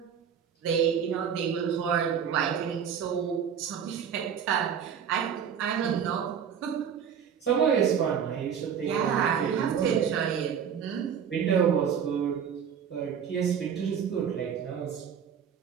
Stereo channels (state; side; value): quieter; left; 7.9 dB